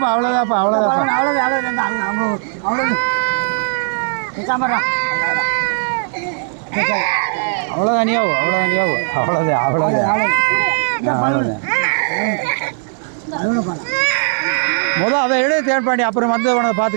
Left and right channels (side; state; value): left; silent; 68 dB below the other